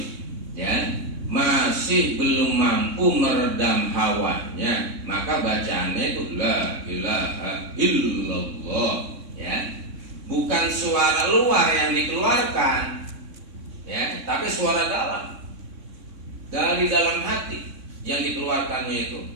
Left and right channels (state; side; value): late; left; 3.6 ms